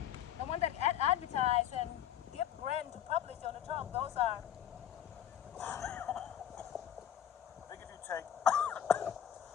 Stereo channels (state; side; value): quieter; right; 10.2 dB